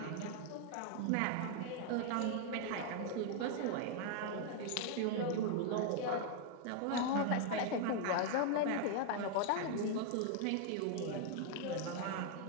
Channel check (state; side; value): different; both; correlation 0.00